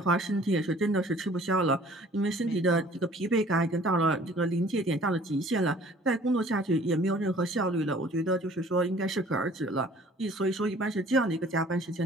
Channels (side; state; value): both; normal; correlation 0.52